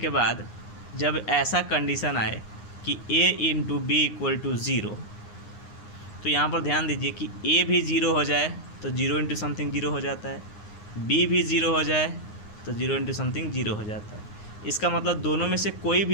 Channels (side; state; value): right; late; 9.7 ms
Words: बाद जब ऐसा कंडीशन आए कि a into B equal to 0, तो यहाँ पर ध्यान दीजिए कि a भी 0 हो जाए तो 0 इंटू समथिंग 0 हो जाता है, b भी 0 हो जाए तो 0 इंटू समथिंग 0 हो जाता है। इसका मतलब दोनों में से कोई